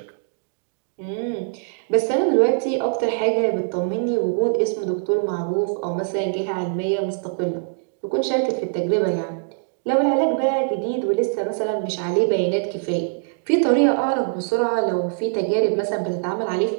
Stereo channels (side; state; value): left; silent; digital silence